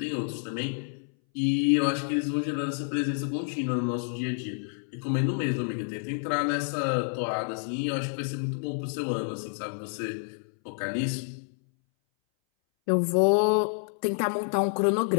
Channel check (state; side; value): silent; right; 59 dB below the other